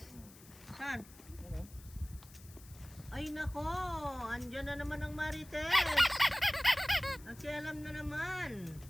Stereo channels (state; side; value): noise; left; hiss, 21 dB below the sound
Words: Saan? Ano? Ay nako, andyan na naman ang Marites. Nakialam na naman.